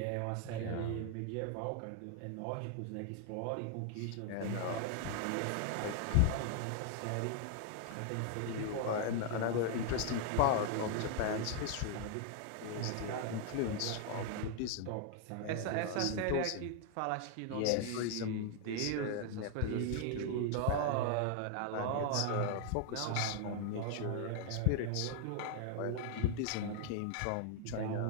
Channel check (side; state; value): both; different; correlation 0.00